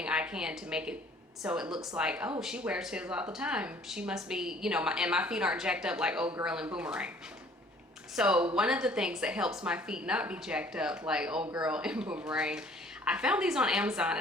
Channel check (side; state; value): both; normal; correlation 0.56